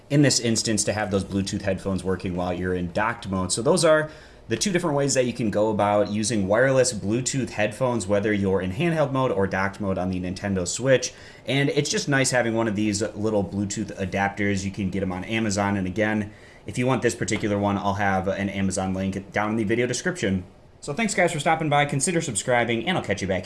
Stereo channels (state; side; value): identical; both; correlation 1.00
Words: In this instance, to have those Bluetooth headphones working while you're in docked mode. So those are the two different ways that you can go about using wireless Bluetooth headphones, whether you're in handheld mode or docked mode on the Nintendo Switch. And it's just nice having one of these little Bluetooth adapters. You can get them on Amazon. And again, if you want this particular one, I'll have an Amazon link down in the video description. So thanks guys for stopping by, consider subscribing, and I'll catch you back